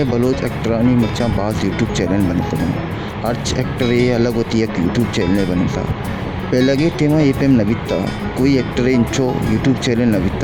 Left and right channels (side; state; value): both; identical; correlation 1.00